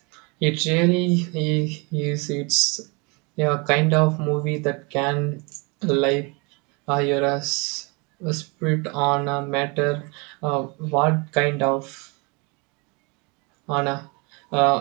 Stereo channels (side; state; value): left; quieter; 30.1 dB